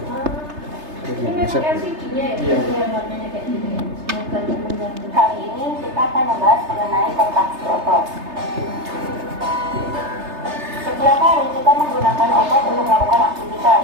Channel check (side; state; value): left; late; 3.3 ms